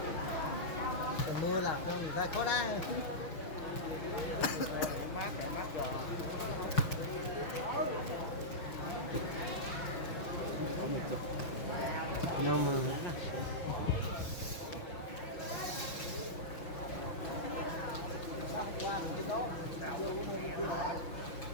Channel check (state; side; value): late; right; 6.0 ms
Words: mưa là người ta có đá. Nhưng mà